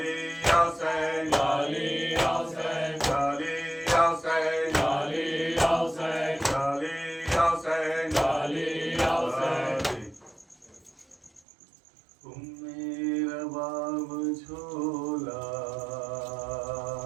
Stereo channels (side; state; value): left; drops out; at 11.4 s